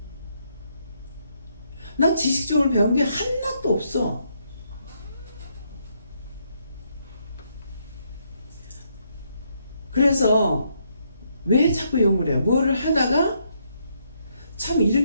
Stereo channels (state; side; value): inverted; both; correlation -0.75